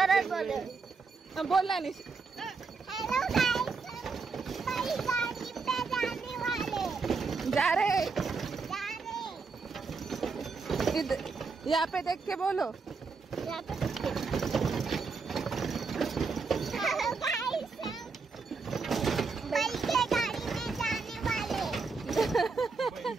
सरळ बोल. बोलला नाही. हेलो गाइस, बैलगाड़ी पे जाने वाले. जा रे. जाने. यहाँ पे देख के बोलो. यहाँ पे. हेलो गाइस, बैलगाड़ी में जाने वाले.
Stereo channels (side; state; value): left; quieter; 4.6 dB